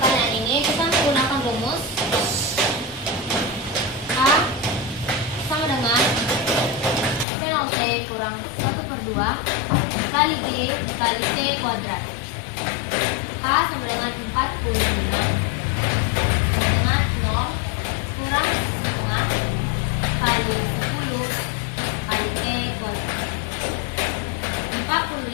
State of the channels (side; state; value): right; drops out; at 7.2 s